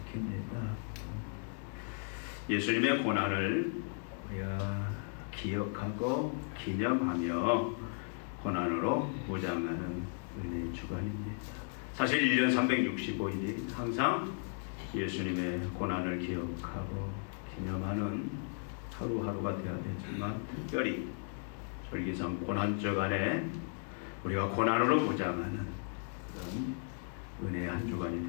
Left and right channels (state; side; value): silent; right; 54 dB below the other